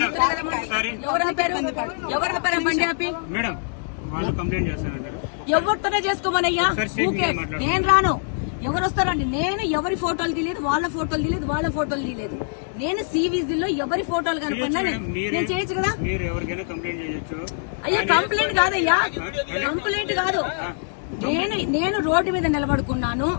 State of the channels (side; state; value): right; silent; digital silence